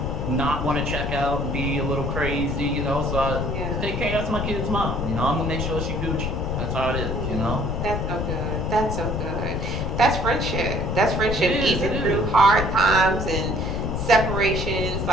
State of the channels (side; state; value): left; noise; rumble, 3 dB below the sound